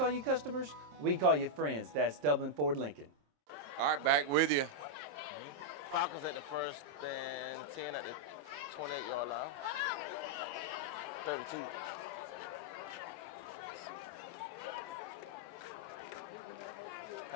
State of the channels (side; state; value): left; late; 27 ms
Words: you customers, we call you friends. That's Dublin Ford Lincoln. All right, back with you. Falcons at the 1st and 10 at the 28-yard line. 32.